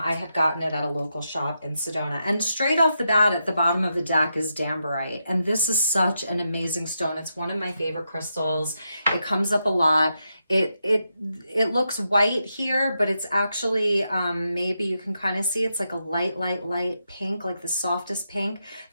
had gotten it at a local shop in Sedona. And straight off the bat, at the bottom of the deck is Dambarite. And this is such an amazing stone. It's one of my favorite crystals. It comes up a lot. It looks white here, but it's actually, maybe you can kind of see it's like a light pink, like the softest pink.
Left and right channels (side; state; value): both; inverted; correlation -0.85